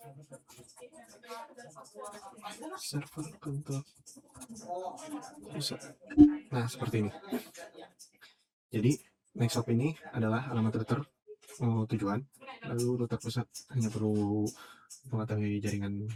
server kantor pusat. Nah, seperti ini. Jadi next shop ini adalah alamat router tujuan, lalu router pusat hanya perlu mengetahui jaringan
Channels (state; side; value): identical; both; correlation 1.00